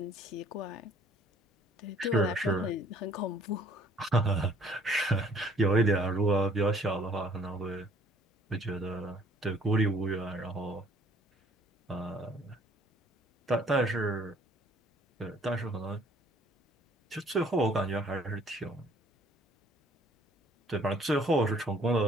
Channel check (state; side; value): normal; both; correlation 0.59